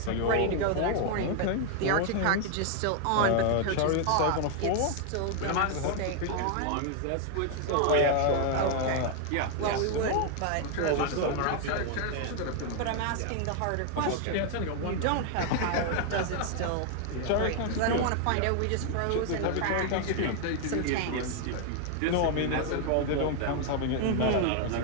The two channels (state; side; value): different; both; correlation 0.00